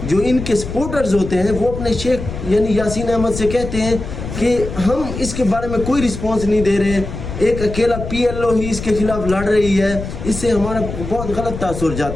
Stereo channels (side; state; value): left; noise; rumble, 8 dB below the sound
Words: جو ان کے سپورٹرز ہوتے ہیں وہ اپنے شیخ یعنی یاسین احمد سے کہتے ہیں کہ ہم اس کے بارے میں کوئی رسپانس نہیں دے رہے، ایک اکیلا PLO ہی اس کے خلاف لڑ رہی ہے، اس سے ہمارا بہت غلط تاثر